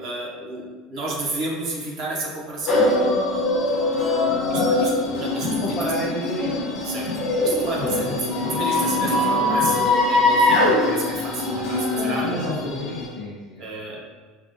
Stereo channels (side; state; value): both; normal; correlation 0.31